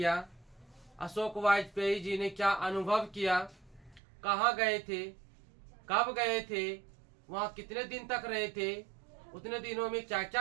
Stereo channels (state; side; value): drops out; left; at 4.0 s